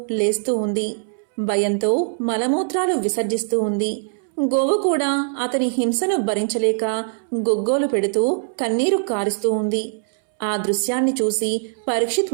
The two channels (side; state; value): left; silent; 65 dB below the other